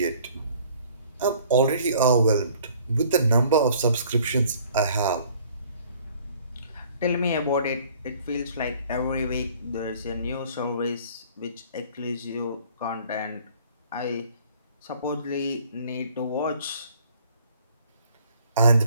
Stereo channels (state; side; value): inverted; both; correlation -0.55